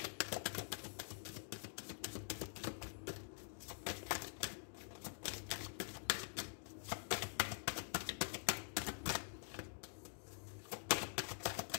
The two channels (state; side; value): silent; right; digital silence